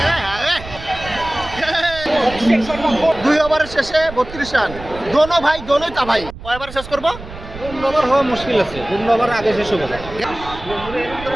দুই ওভারের শেষে 32 রান দোনো ভাই দোনোই তা ভাই কয় ওভার শেষ করবো 2 ওভার হওয়া মুশকিল আছে 2 ওভার আগে শেষ হবে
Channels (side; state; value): right; noise; rumble, 14 dB below the sound